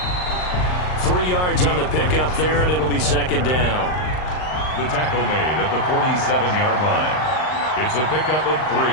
3 yards on the pickup there, and it'll be 2nd down. The tackle made at the 47-yard line. It's a pickup of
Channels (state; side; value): late; right; 39 ms